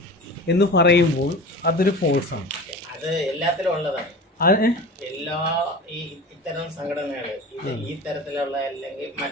എന്ന് പറയുമ്പോൾ അതൊരു ഫോഴ്സാണ്. അത് എല്ലാത്തിലും ഉള്ളതാണ്. എല്ലാ ഇത്തരം സംഘടനകൾ ഈ തരത്തിലുള്ള അല്ലെങ്കിൽ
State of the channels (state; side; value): normal; both; correlation 0.35